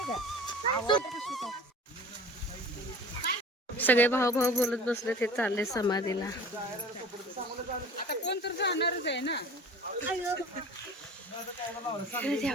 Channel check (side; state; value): both; normal; correlation 0.42